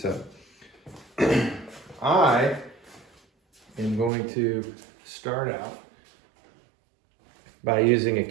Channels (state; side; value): drops out; left; at 4.1 s